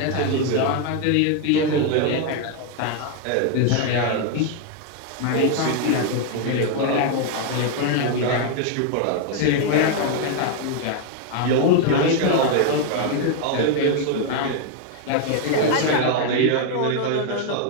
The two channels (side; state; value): both; different; correlation 0.00